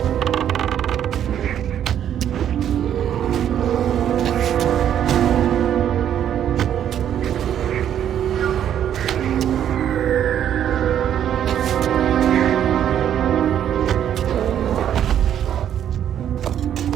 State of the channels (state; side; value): quieter; left; 10.0 dB